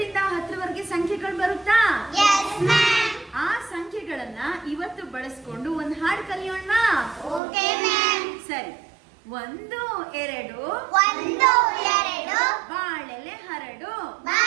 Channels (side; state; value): left; drops out; at 7.4 s